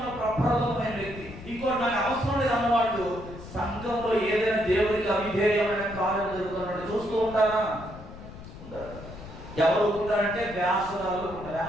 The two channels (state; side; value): noise; left; rumble, 14 dB below the sound